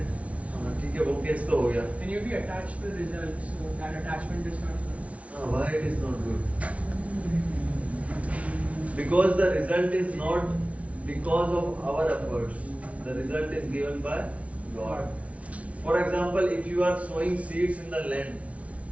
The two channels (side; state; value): left; late; 0.065 ms